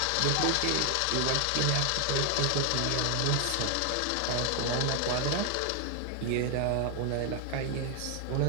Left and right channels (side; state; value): both; different; correlation 0.00